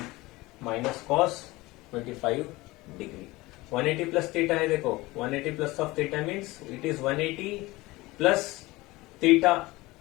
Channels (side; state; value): right; quieter; 20.6 dB